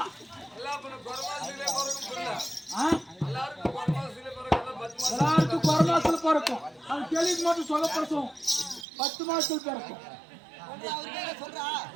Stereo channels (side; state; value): left; drops out; at 8.8 s